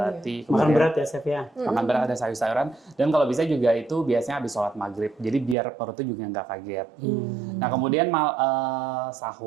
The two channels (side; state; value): left; drops out; at 5.6 s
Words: Makan berat ya Chef ya? Makan berat, ada sayur-sayuran. Dan kalau bisa juga itu biasanya habis sholat maghrib. Jadi biar perutnya juga nggak kaget. Nah kemudian